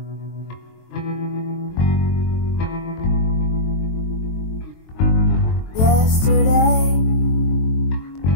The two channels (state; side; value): late; right; 23 ms